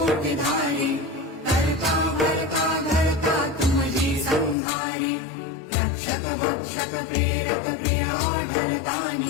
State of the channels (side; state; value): right; drops out; at 4.5 s